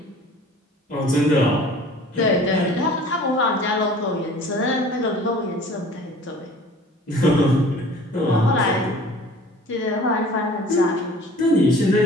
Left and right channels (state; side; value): normal; both; correlation 0.47